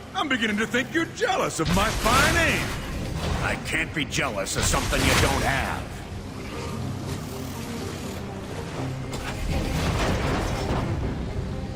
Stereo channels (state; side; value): identical; both; correlation 1.00